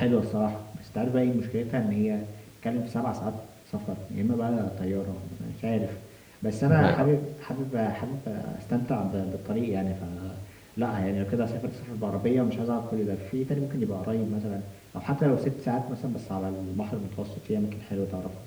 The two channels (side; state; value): both; identical; correlation 1.00